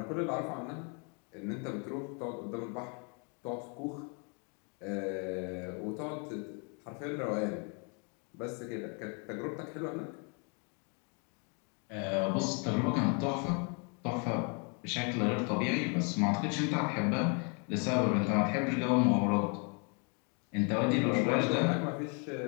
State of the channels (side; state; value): right; quieter; 36.6 dB